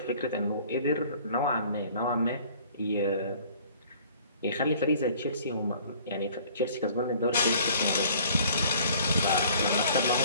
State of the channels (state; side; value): inverted; both; correlation -0.53